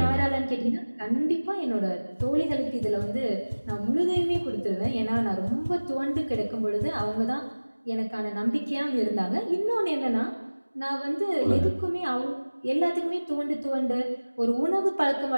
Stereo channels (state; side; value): inverted; both; correlation -1.00